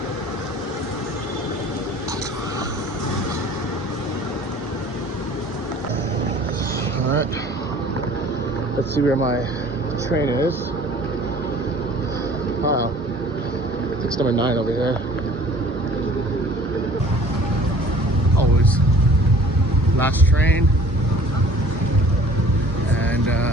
All right, let's see where my train is. Wow, it's number 9 over here. Always last train, and I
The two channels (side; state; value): both; normal; correlation 0.50